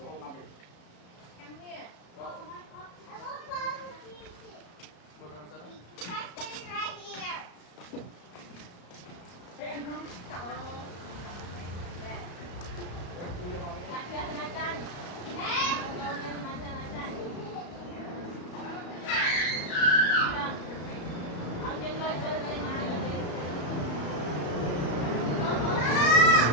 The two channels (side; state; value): right; late; 34 ms